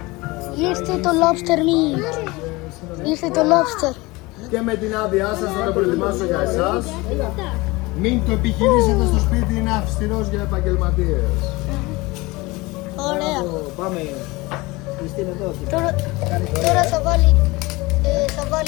Ήρθε το lobster meat. Ήρθε το lobster. Και με την άδειά σας θα το προετοιμάσω για εσάς. Μην το επιχειρήσετε στο σπίτι, είναι αυστηρός για επαγγελματίες. Ωραία. Πάμε. Χριστίνα εδώ. Τώρα θα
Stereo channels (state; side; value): quieter; right; 22.6 dB